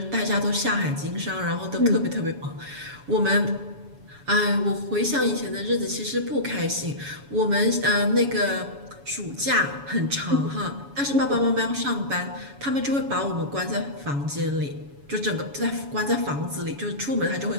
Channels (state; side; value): late; left; 7.1 ms